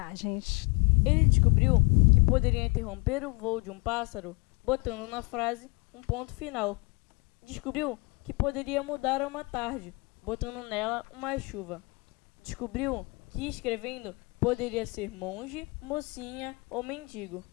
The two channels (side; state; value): right; quieter; 28.9 dB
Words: Ele descobriu que poderia interromper o voo de um pássaro botando na frase um ponto final. Descobriu que poderia mudar uma tarde botando nela uma chuva. Descobriu que escrevendo poderia ser monge, mocinha ou mendigo.